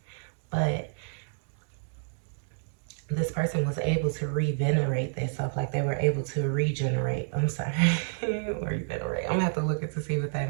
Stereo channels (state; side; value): silent; left; digital silence